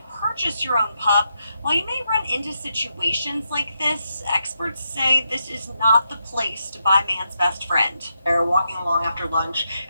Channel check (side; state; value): both; inverted; correlation -0.83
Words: purchase your own pup, while you may run into situations like this, experts say this is not the place to buy man's best friend. They're walking along after lunch